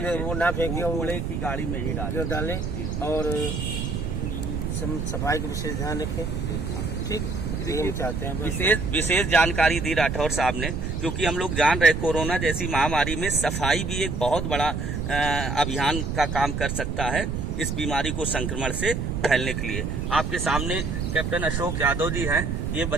वो ना फेंके, कूड़े की गाड़ी में ही डालें और सफाई का विशेष ध्यान रखें। ठीक, हम चाहते हैं। विशेष जानकारी दी राठौर साहब ने, क्योंकि हम लोग जान रहे कोरोना जैसी महामारी में सफाई भी एक बहुत बड़ा अभियान का काम कर सकता है इस बीमारी को संक्रमण से फैलने के लिए। आपके सामने कैप्टन अशोक यादव जी हैं, ये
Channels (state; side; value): noise; right; rumble, 3 dB below the sound